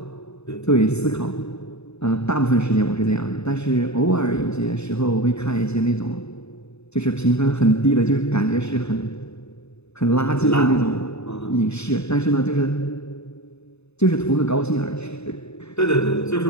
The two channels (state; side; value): late; right; 0.80 ms